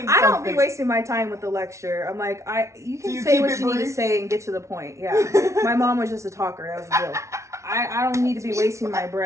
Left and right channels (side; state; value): left; late; 0.14 ms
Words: something. I don't be wasting my time with the lecture. I'm like, you can say what you need to say and get to the point. Yeah. My mom was just a talker. That was the deal. I don't need to be wasting my